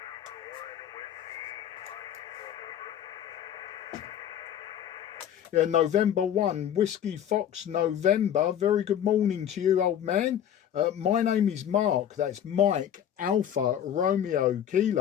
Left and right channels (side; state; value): right; quieter; 9.8 dB